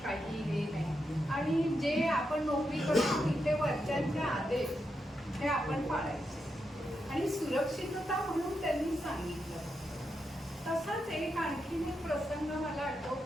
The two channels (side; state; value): both; normal; correlation 0.85